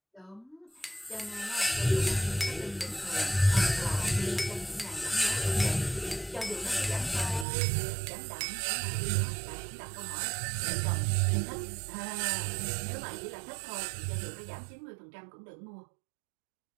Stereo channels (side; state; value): left; drops out; at 7.5 s